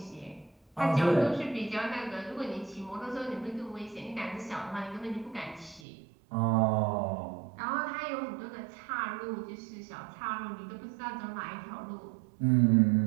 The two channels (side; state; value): left; drops out; at 5.8 s